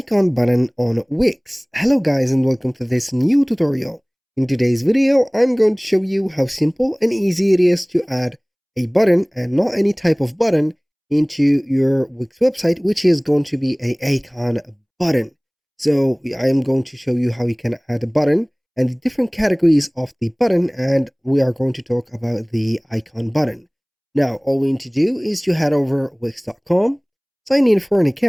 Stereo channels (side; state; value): both; identical; correlation 1.00